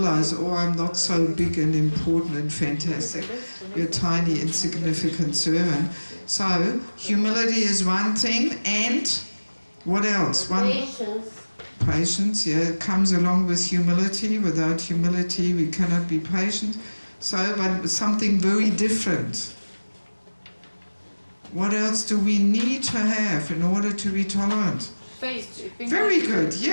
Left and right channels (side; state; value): both; inverted; correlation -1.00